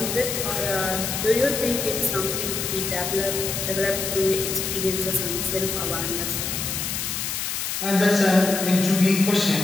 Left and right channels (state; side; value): noise; left; hiss, 3 dB below the sound